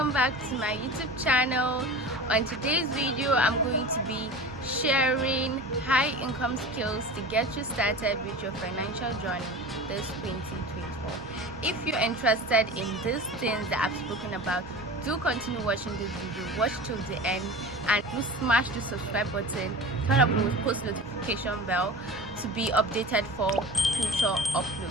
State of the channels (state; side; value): normal; both; correlation 0.34